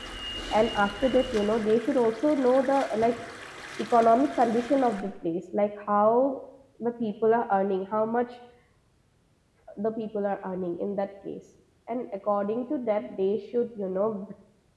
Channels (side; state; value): both; identical; correlation 1.00